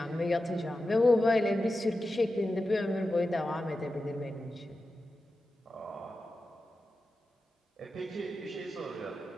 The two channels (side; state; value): both; normal; correlation 0.92